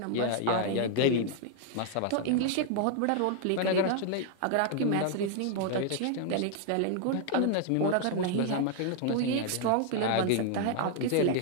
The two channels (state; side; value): different; both; correlation 0.00